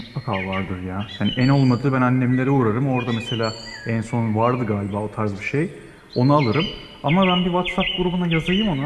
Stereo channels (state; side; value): identical; both; correlation 1.00